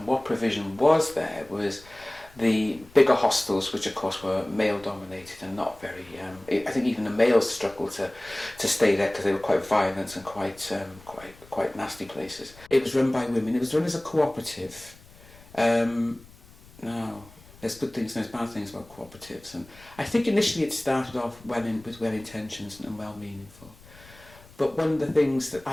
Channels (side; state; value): left; noise; rumble, 23 dB below the sound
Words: what provision was there was the bigger hostels, which of course were male-dominated and not very. I think even the males struggled to stay there because they were quite violent and quite nasty places. It was run by women. It was run as a cooperative. Now, there's good things and there's bad things about cooperatives. And I think initially it started off with well intentions and well meaningful. But one of the things that